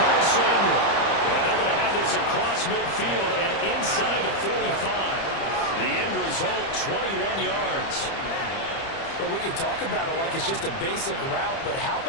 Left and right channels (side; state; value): right; late; 30 ms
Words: Samuel. And they're going to have this across midfield and inside the 45. The end result, 21 yards. Well, we can talk about it like it's just a basic route, but how